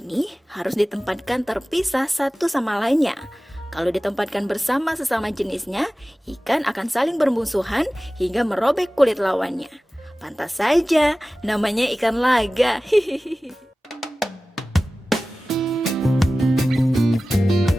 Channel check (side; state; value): both; normal; correlation 0.97